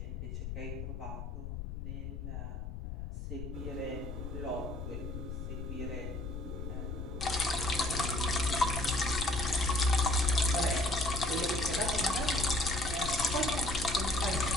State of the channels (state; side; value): noise; left; rumble, 6 dB below the sound